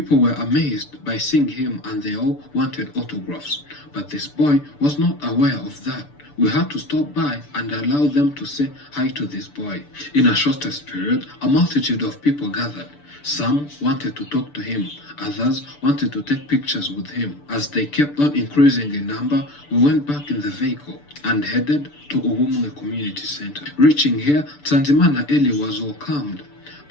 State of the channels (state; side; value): late; right; 6.8 ms